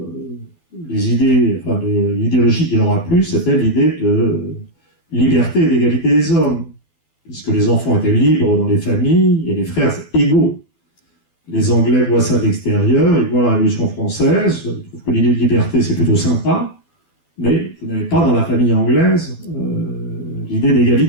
l'idéologie qui leur a plu, c'était l'idée de liberté et d'égalité des hommes, puisque les enfants étaient libres dans les familles et les frères égaux. Les Anglais voient ça de l'extérieur, ils voient la Révolution française, ils trouvent que l'idée de liberté c'est plutôt sympa, mais vous n'avez pas dans la famille anglaise l'idée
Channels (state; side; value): late; right; 12 ms